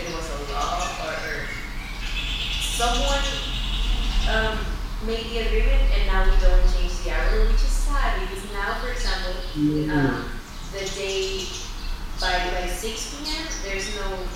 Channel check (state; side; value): identical; both; correlation 1.00